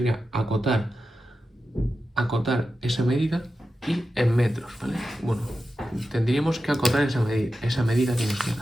acotar esa medida y en metros, ¿vale? Bueno, tendríamos que acotar esa medida que nos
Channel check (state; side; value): normal; both; correlation 0.91